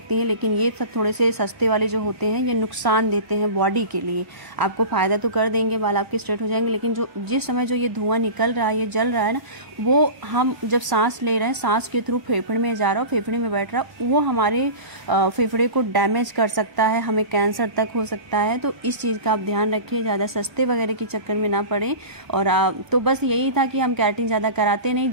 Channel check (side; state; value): left; late; 1.0 ms